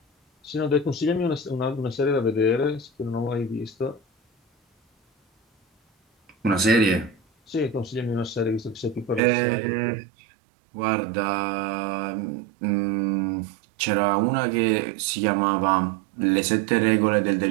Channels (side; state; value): left; drops out; at 9.2 s